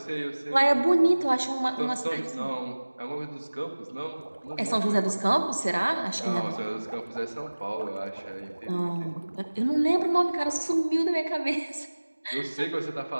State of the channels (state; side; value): inverted; both; correlation -1.00